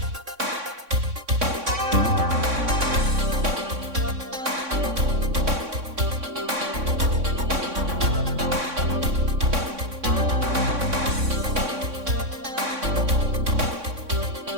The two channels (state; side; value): late; left; 3.6 ms